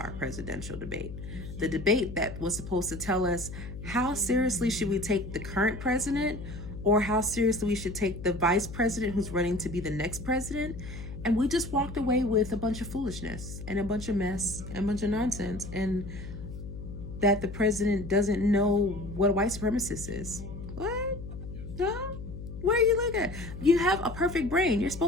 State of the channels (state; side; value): noise; left; hum, 10 dB below the sound